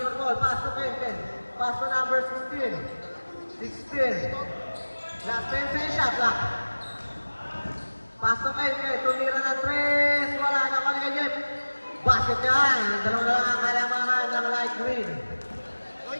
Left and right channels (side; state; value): both; inverted; correlation -1.00